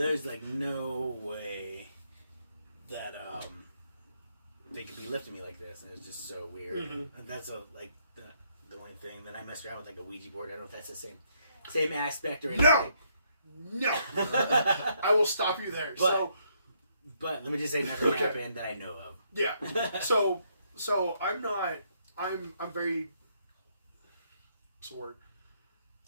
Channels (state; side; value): inverted; both; correlation -0.73